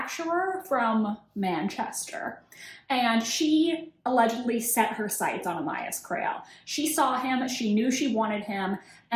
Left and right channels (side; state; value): both; identical; correlation 1.00